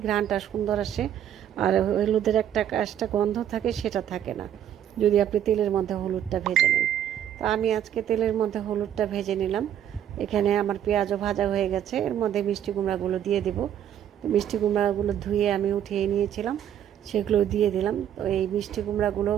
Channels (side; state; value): left; quieter; 10.2 dB